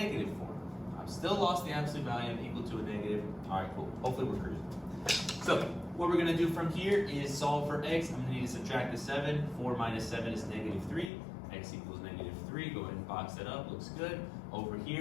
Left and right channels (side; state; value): right; drops out; at 11.1 s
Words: 4. I've still lost the absolute value. I'm equal to a negative. All right, cool. Hopefully we're cruising. So what we're going to do from here is solve for x. I'm going to need to subtract the 7. 4 minus 7 is negative 3. X equals negative 3. Go ahead and box that up. Looks good. Over